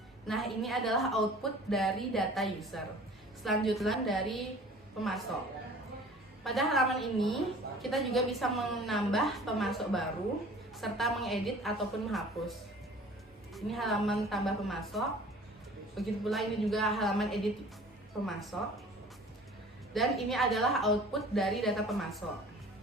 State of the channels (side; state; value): both; normal; correlation 0.46